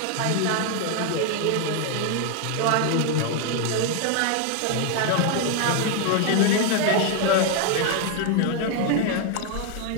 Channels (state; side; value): different; both; correlation 0.01